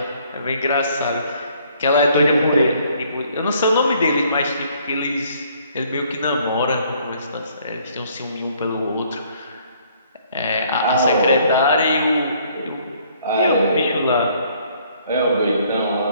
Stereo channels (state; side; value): inverted; both; correlation -0.63